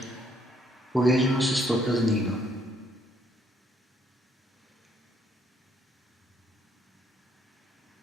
povežemo se s to praznino.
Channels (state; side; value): normal; both; correlation 0.68